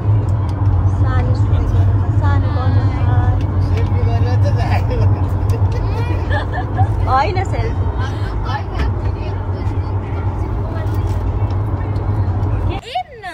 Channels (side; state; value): both; identical; correlation 1.00